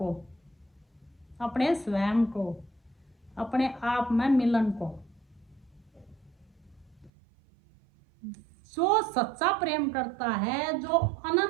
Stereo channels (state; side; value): drops out; left; at 7.1 s